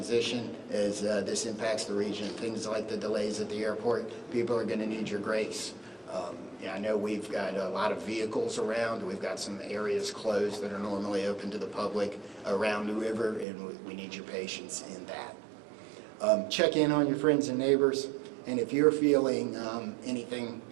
as this impacts the region. Things like the delays at the airport, people are going to need your grace. Yeah, I know we've got a lot of vehicles around. We've got some areas closed that are normally open to the public around the river, and we need your patience in that. Check in on your friends and neighbors, and if you're feeling anything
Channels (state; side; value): drops out; left; at 13.5 s